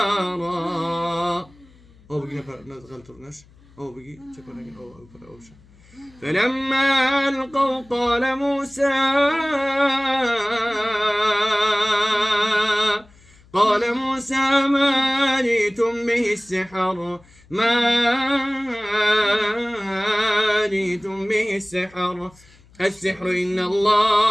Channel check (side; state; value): left; noise; hum, 27 dB below the sound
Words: فلما ألقوا قال موسى ما جئتم به السحر السحر إن الله